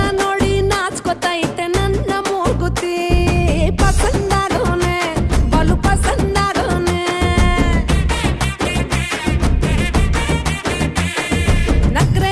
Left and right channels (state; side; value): identical; both; correlation 1.00